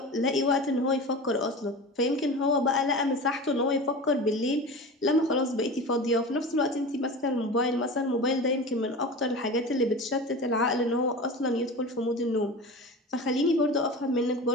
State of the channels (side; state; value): both; normal; correlation 0.31